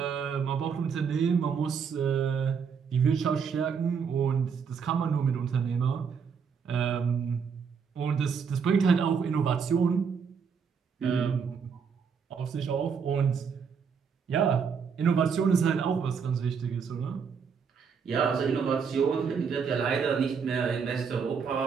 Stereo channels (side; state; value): left; quieter; 6.3 dB